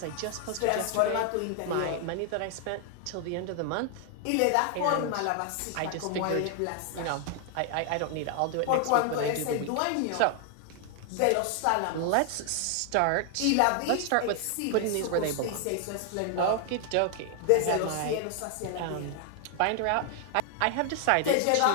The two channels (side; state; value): both; different; correlation 0.00